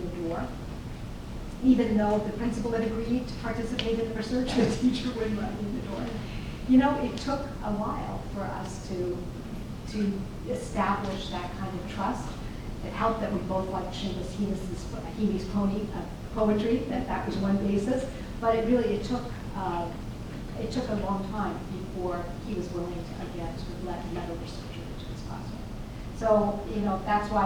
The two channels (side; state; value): both; identical; correlation 1.00